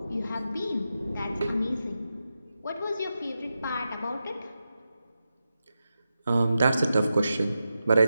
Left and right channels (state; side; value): inverted; both; correlation -0.90